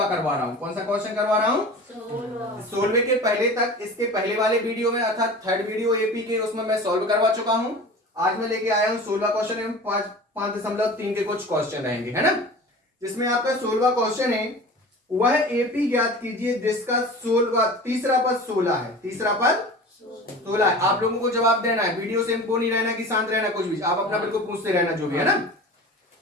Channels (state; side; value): normal; both; correlation 0.37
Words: करवा रहा हूँ। कौन सा क्वेश्चन करवा रहा हूँ? 16 के पहले तक इसके पहले वाले वीडियो में अर्थात थर्ड वीडियो एपी के उसमें मैं सॉल्व करवा चुका हूँ। आज मैं लेके आया हूँ 16 क्वेश्चन एवं 5.3 के कुछ क्वेश्चन रहेंगे, है ना, जिसमें आपका 16 क्वेश्चन है वह एपी ज्ञात कीजिए जिसका 16 तीसरा पद 16 है। तीसरा पद 16 है। आप लोगों को जवाब देना है, वीडियो से इनको नहीं रहना कि शांत रहना, कुछ भी आप अपना बिल्कुल पूछते रहना जो भी है ना।